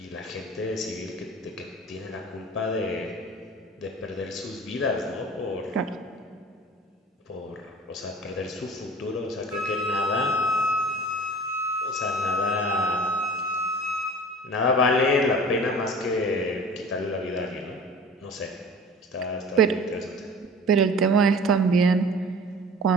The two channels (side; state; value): both; normal; correlation 0.42